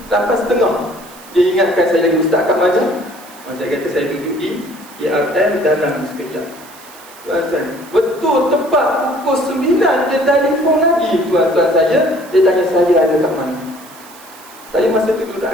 8.30. Dia ingatkan saya lagi, "Ustaz kat mana?" Saya kata saya duduk di IRM dalam sekejap. Tuan-tuan, betul tepat pukul 9 dia telefon lagi tuan-tuan saya. Dia tanya saya ada kat mana. Saya masa tu duduk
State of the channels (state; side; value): noise; right; hiss, 21 dB below the sound